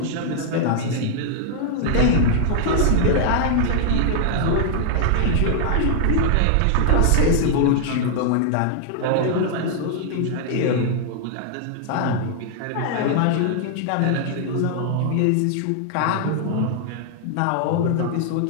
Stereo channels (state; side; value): different; both; correlation 0.00